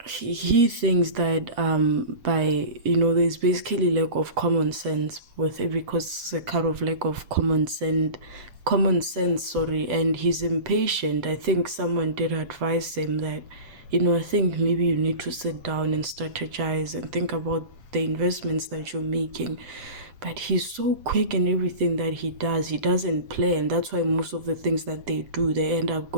he thinks that by there's basically lack of common sense with it, because it's a kind of lack of common sense, and he's impatient. I think someone did advise him that I think maybe you need to sit down and strategize and think about the investments that you're making. But he's so quick in everything that he does. He doesn't plan. That's why most of the things that they do, they end up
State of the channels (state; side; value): late; left; 7.8 ms